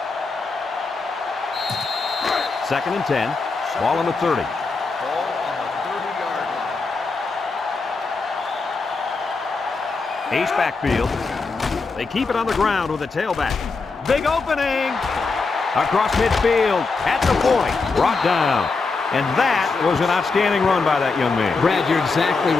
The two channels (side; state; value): right; quieter; 4.2 dB